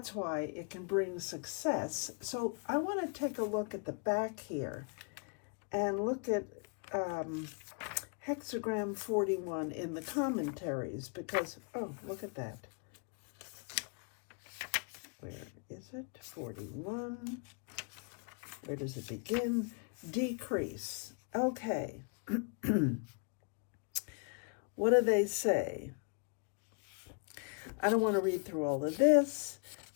why it can bring success. So I want to take a look at the back here and look at hexagram 41 in the commentaries because, oh, look at that. Where is it? 41. Where does it begin? Decrease. Okay. What do they say? I don't want to read through all of this,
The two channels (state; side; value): quieter; right; 38.4 dB